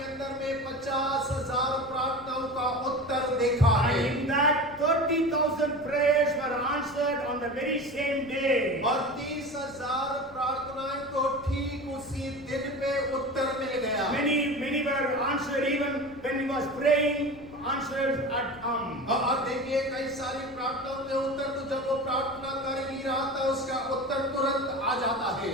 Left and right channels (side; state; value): left; noise; rumble, 23 dB below the sound